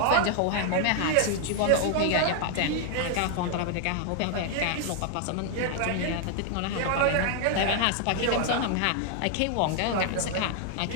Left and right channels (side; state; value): both; different; correlation 0.00